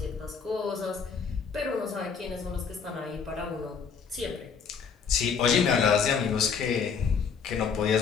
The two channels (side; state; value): right; quieter; 6.2 dB